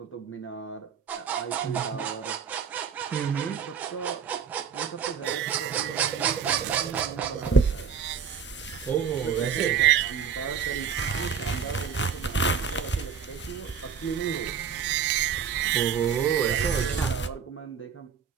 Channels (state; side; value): quieter; left; 7.1 dB